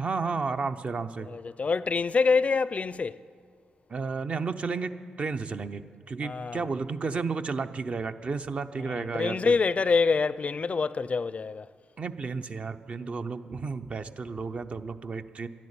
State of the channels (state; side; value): normal; both; correlation 0.83